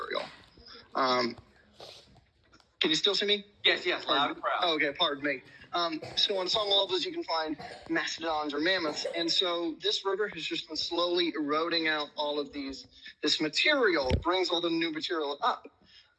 Can you still see me? Yes, loud and proud. Oh, okay, pardon me. So on some levels, you can find mastodons or mammoths. And so this river has just been slowly eroding out all of this material, brings all the new material up.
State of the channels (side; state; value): both; identical; correlation 1.00